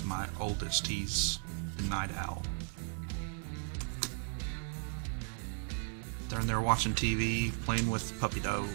my oldest, he's the night owl. They're in there watching TV, playing with puppy dog.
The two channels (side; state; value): left; silent; 54 dB below the other